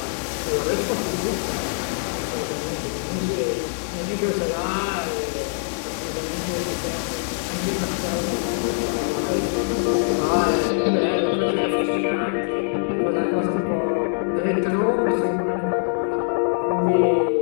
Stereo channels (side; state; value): right; silent; digital silence